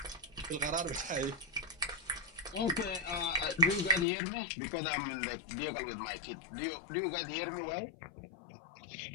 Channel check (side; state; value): right; drops out; at 4.0 s